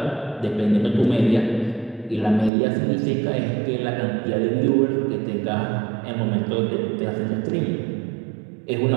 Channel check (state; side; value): drops out; left; at 2.5 s